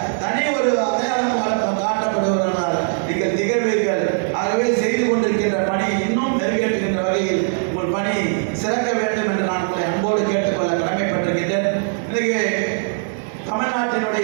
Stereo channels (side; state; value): left; silent; digital silence